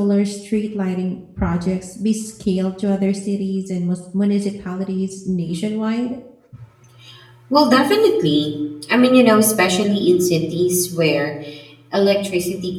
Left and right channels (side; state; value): both; identical; correlation 1.00